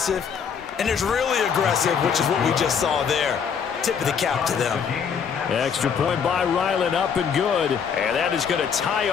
and there's really aggressive, which is what we just saw there. Tip of the cap to them. Extra point by Ryland, up and good. And that is going to tie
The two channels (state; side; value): quieter; right; 6.9 dB